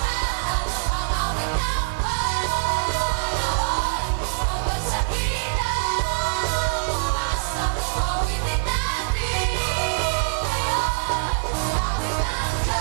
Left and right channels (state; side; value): silent; left; digital silence